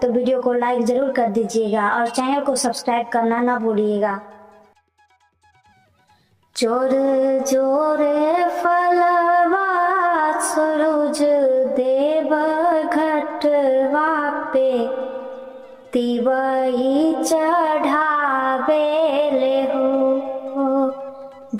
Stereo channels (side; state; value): both; identical; correlation 1.00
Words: वीडियो को लाइक जरूर कर दीजिएगा और चैनल को सब्सक्राइब करना ना भूलिएगा। जोर जोर फलवा सूरज देव घटवा पे तिवई चढ़ावेले हो।